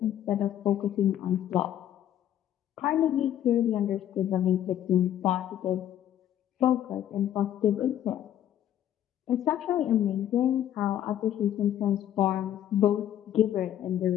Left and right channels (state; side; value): quieter; right; 11.2 dB